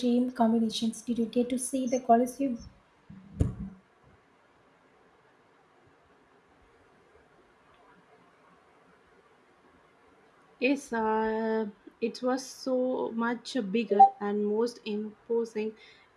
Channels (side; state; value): both; identical; correlation 1.00